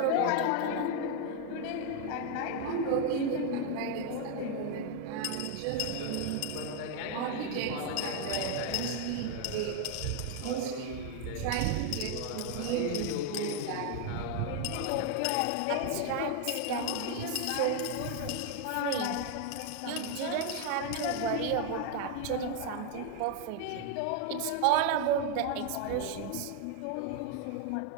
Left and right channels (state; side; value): different; both; correlation 0.00